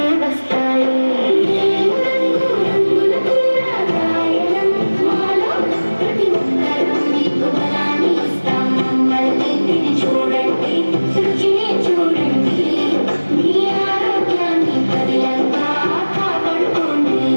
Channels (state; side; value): inverted; both; correlation -1.00